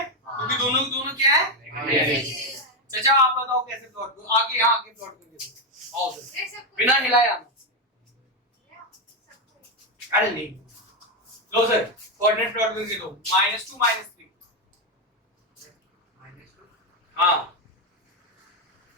क्योंकि दोनों क्या है? चाचा आप बताओ कैसे प्लॉट करो, आगे यहाँ आगे प्लॉट करके आओ सर, बिना हिलाए आना। अरे नहीं लो सर कोऑर्डिनेट प्लॉट करके दो, -2 -3। हाँ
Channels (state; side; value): normal; both; correlation 0.07